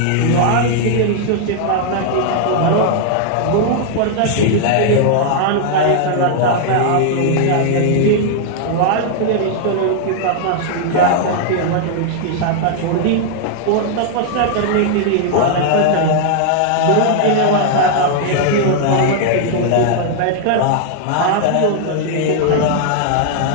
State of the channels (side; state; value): both; different; correlation -0.01